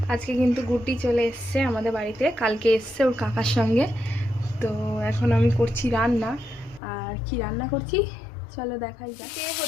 আজকে কিন্তু গুড্ডি চলে এসছে আমাদের বাড়িতে, কালকে এসছে ওর কাকার সঙ্গে। তো এখন আমি করছি রান্না। আর কি রান্না করছি চলো দেখাই যাক। এদিকে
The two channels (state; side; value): drops out; right; at 6.8 s